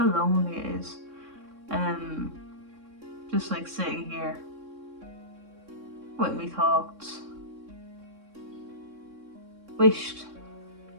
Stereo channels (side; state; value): left; late; 3.6 ms